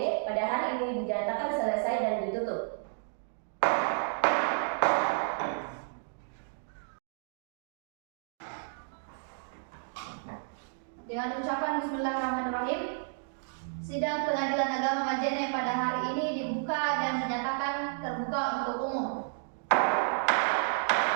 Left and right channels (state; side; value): silent; left; digital silence